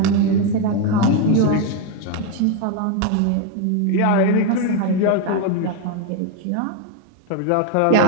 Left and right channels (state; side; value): different; both; correlation 0.02